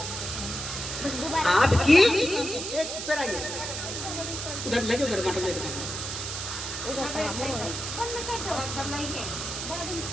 आपकी उधर लगे उधर माता ले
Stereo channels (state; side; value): noise; right; hiss, 5 dB below the sound